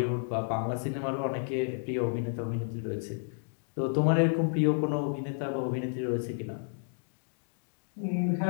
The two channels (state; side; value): silent; right; digital silence